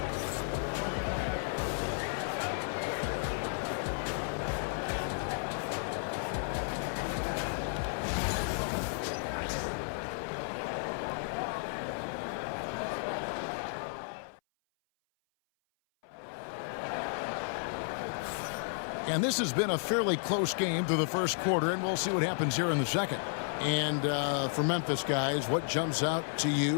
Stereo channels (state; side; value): silent; right; 56 dB below the other